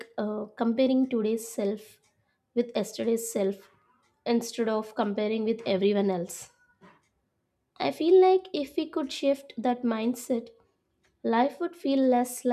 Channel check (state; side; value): identical; both; correlation 1.00